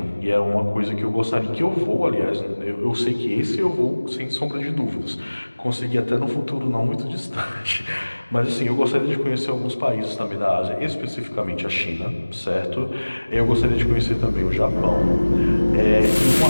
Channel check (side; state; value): both; inverted; correlation -1.00